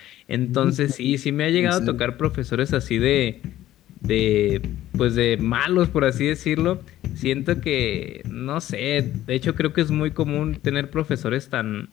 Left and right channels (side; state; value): right; quieter; 13.9 dB